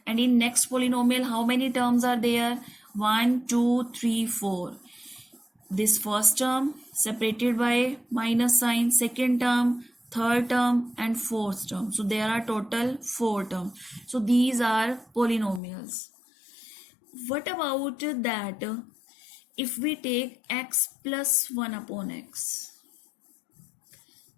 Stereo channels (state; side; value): drops out; right; at 15.6 s